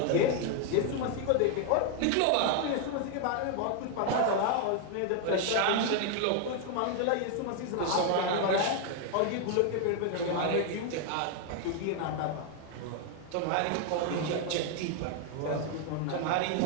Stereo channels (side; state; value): both; different; correlation 0.00